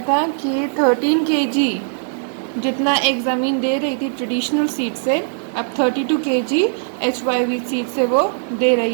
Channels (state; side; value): silent; left; digital silence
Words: कि 13 kg जितना एक ज़मीन दे रही थी ट्रेडिशनल सीड से, अब 32 kg HYV सीड से वो दे